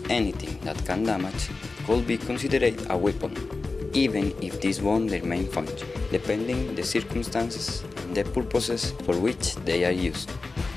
anything that can damage could be considered a weapon, even if this won't their main function, depending the circumstances and the purposes for which they are used.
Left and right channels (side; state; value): right; quieter; 3.7 dB